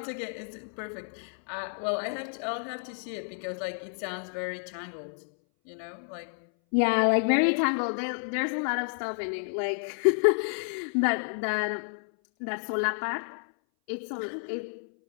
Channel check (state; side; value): silent; right; 58 dB below the other